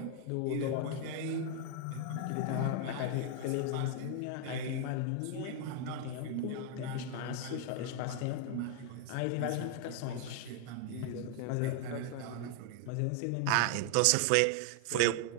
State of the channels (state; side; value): different; both; correlation 0.00